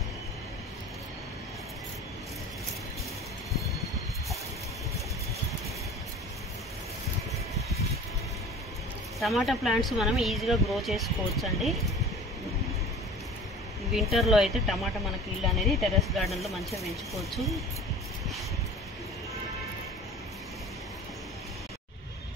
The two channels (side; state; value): both; normal; correlation 0.41